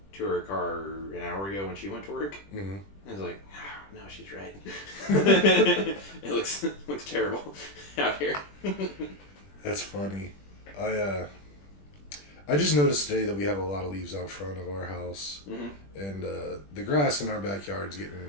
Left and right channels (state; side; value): late; right; 20 ms